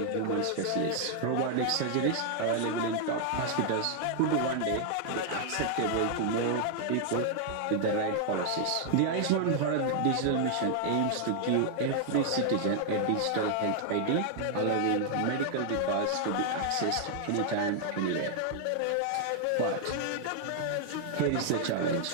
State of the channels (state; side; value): different; both; correlation 0.00